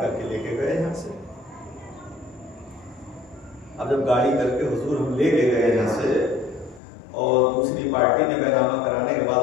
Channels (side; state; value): right; drops out; at 6.8 s